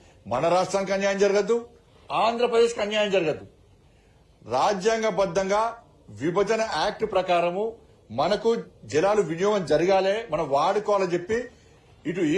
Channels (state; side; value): identical; both; correlation 1.00